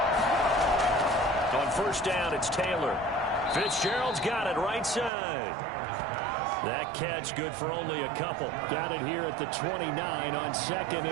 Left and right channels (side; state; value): left; drops out; at 5.1 s